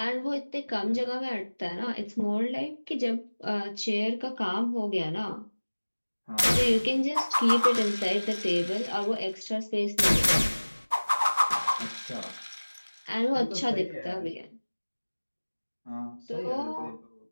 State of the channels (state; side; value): inverted; both; correlation -1.00